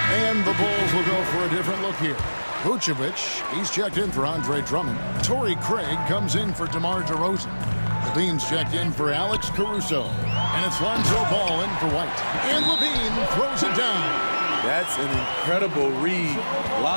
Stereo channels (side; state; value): both; inverted; correlation -1.00